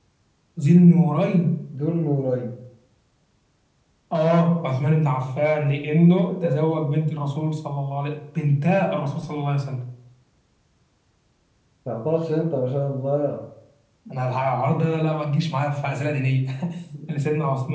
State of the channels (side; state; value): both; identical; correlation 1.00